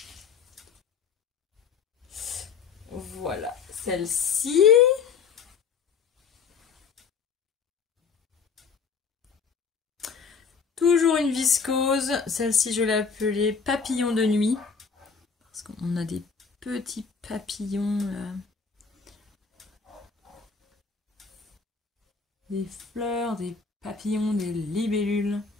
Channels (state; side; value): quieter; right; 5.7 dB